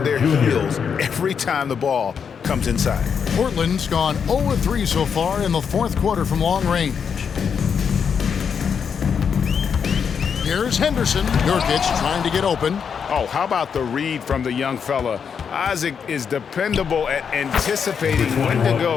their heels every time the ball comes inside. Portland's gone 0 of 3 so far in the fourth quarter from long range. Here's Henderson. Nurkic trying to get open. Oh, how about the read from the young fella? Isaac is dependable at anticipating when to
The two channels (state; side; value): quieter; right; 6.8 dB